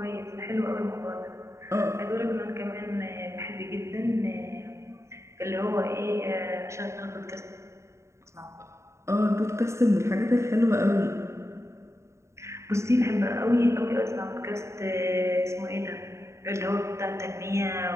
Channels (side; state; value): left; late; 0.14 ms